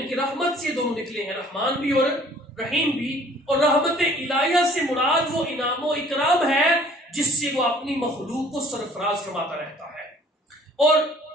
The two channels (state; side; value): normal; both; correlation 0.54